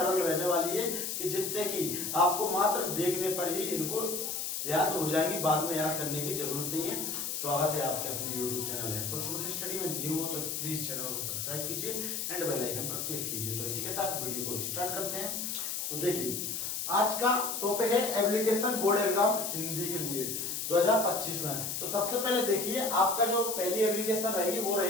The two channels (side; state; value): left; noise; hiss, 3 dB below the sound